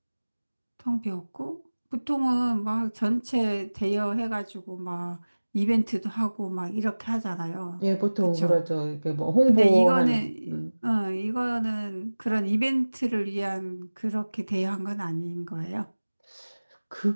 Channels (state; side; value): inverted; both; correlation -1.00